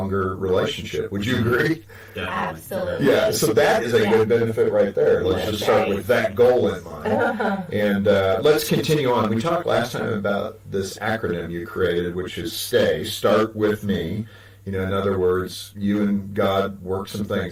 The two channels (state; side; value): identical; both; correlation 1.00